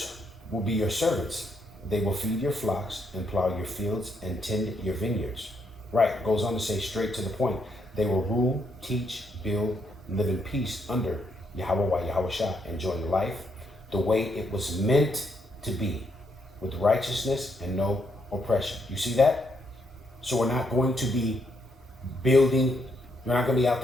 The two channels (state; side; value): normal; both; correlation 0.75